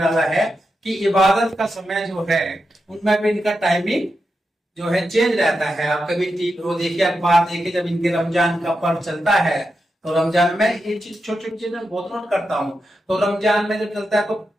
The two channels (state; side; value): normal; both; correlation 0.88